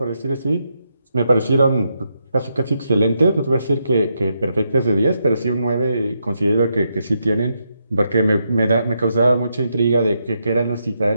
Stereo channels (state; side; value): inverted; both; correlation -0.81